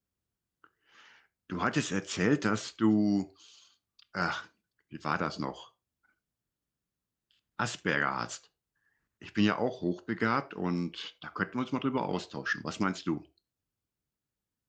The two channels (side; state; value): both; identical; correlation 1.00